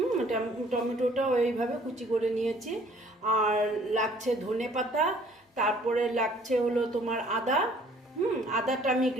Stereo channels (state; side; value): normal; both; correlation 0.57